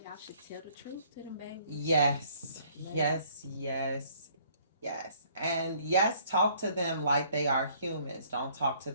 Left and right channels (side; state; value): both; inverted; correlation -0.60